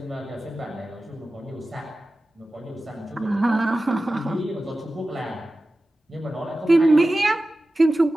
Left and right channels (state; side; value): normal; both; correlation 0.95